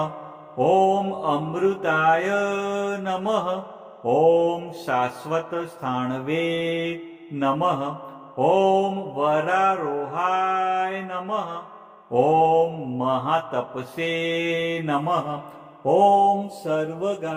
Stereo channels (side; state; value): both; identical; correlation 1.00